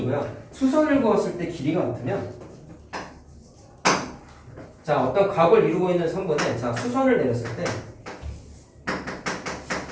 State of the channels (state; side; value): identical; both; correlation 1.00